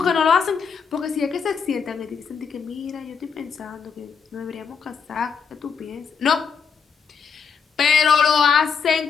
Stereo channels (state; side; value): quieter; right; 6.2 dB